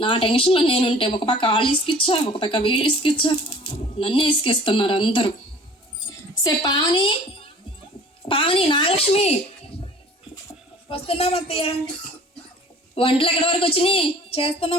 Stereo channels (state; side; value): normal; both; correlation 0.48